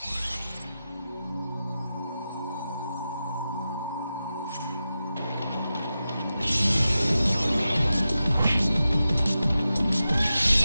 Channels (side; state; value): both; inverted; correlation -0.92